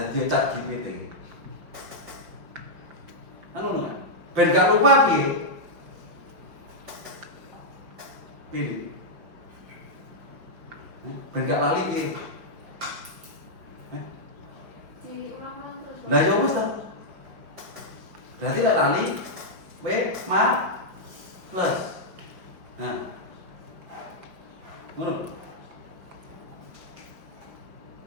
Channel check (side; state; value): left; late; 5.5 ms